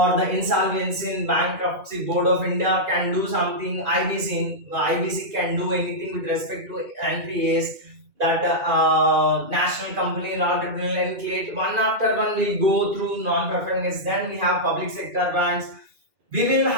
the Insolvency and Bankruptcy Board of India can do something, IBC can do anything with respect to NPAs, that national company law tribunal, and create one after one. We'll go through non-performing assets. Then we have public sector banks. We will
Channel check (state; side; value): late; left; 2.4 ms